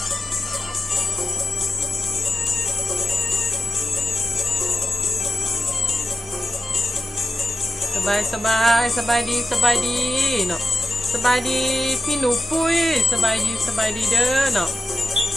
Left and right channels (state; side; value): normal; both; correlation 0.92